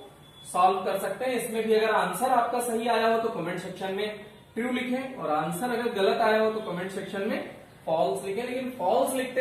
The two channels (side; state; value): both; identical; correlation 1.00